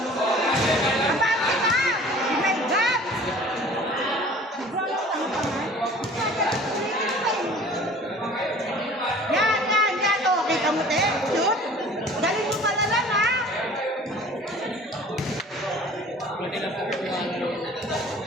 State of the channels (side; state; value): both; normal; correlation 0.47